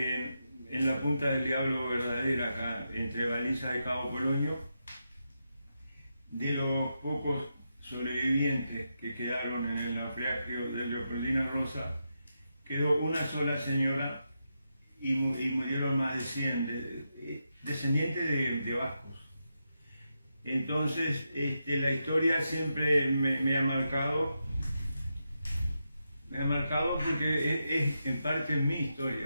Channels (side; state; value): both; inverted; correlation -0.86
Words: la Punta del Diablo verdadera, acá entre Baliza y Cabo Polonio. De los pocos sobrevivientes que quedaron en el naufragio de Leopoldina Rosa, quedó una sola señora y murieron más de 100 descendientes de vascos. Entonces, la historia siempre me ha marcado porque es en parte mi